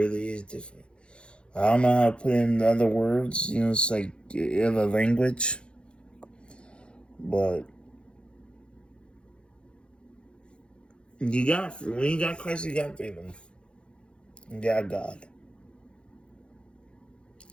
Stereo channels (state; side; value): late; right; 0.056 ms